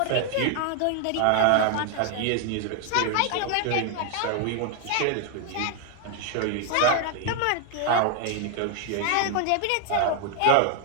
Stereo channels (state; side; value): different; both; correlation 0.00